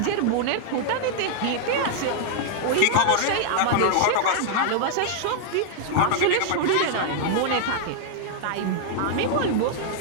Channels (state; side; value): different; both; correlation -0.01